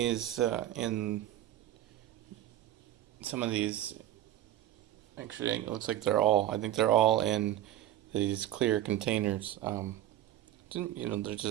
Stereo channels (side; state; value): left; quieter; 12.6 dB